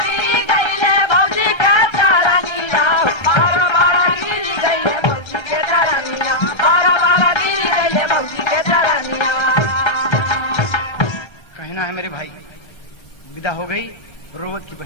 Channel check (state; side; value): late; right; 1.3 ms